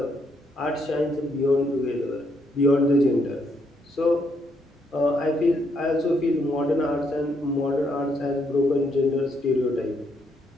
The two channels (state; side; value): normal; both; correlation 0.74